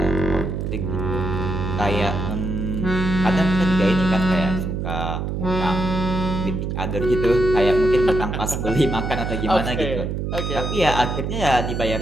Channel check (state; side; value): noise; right; hum, 3 dB below the sound